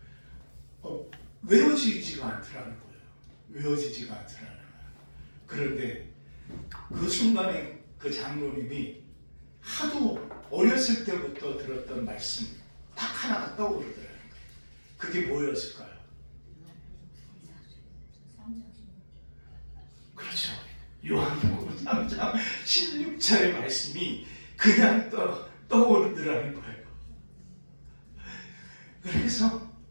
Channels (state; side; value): inverted; both; correlation -1.00